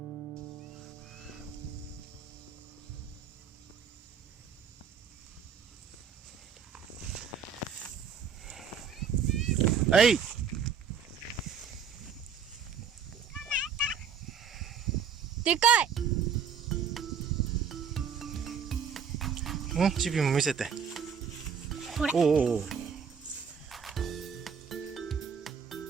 はい。でかい。チビも見せて。これ。お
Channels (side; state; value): left; quieter; 6.7 dB